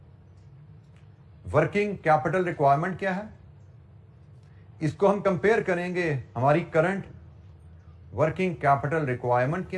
वर्किंग कैपिटल रिक्वायरमेंट क्या है, इसको हम कंपेयर करेंगे हमारी करंट वर्किंग कैपिटल रिक्वायरमेंट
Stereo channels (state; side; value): identical; both; correlation 1.00